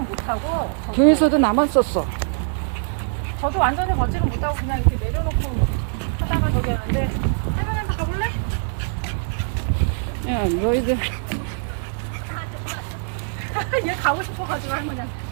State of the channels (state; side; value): silent; left; 56 dB below the other